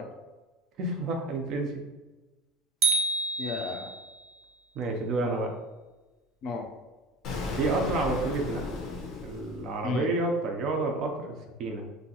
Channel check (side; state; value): both; normal; correlation 0.34